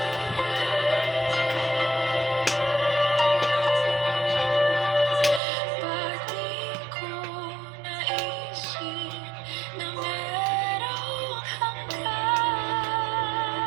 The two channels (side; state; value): left; drops out; at 5.4 s